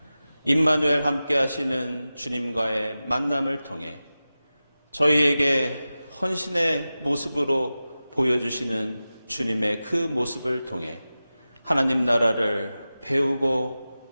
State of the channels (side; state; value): both; inverted; correlation -0.95